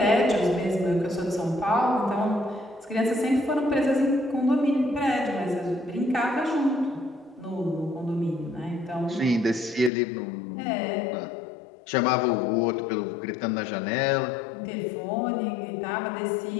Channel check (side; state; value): right; drops out; at 9.9 s